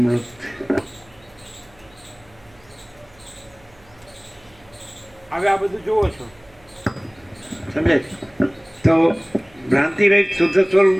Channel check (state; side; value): noise; right; hum, 28 dB below the sound